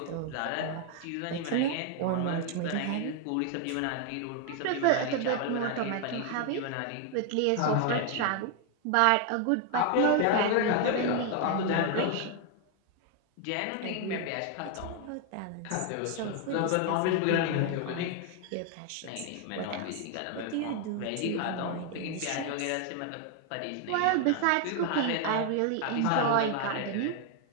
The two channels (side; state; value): both; different; correlation 0.00